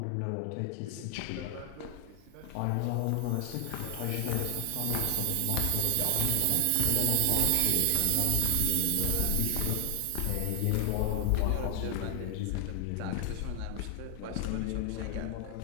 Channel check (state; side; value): different; both; correlation 0.00